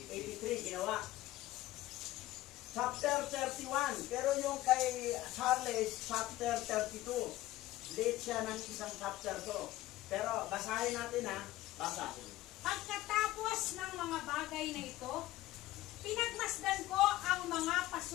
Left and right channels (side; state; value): right; quieter; 16.3 dB